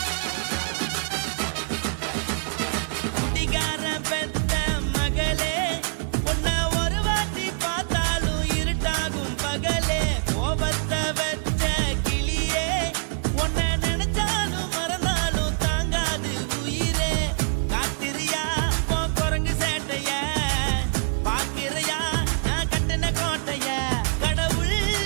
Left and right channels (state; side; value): silent; left; 62 dB below the other